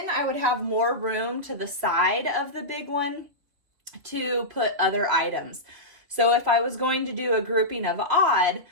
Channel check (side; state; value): left; late; 3.4 ms